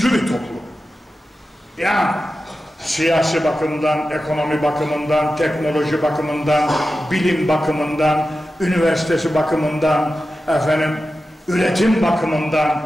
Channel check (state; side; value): normal; both; correlation 0.93